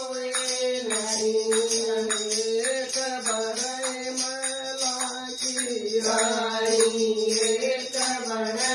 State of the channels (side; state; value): both; identical; correlation 1.00